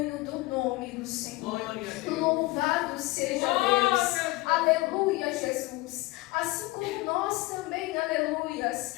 do nome do Senhor, louvado seja Deus, aleluia, Jesus, assim como nós também, aleluias,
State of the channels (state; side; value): quieter; right; 21.1 dB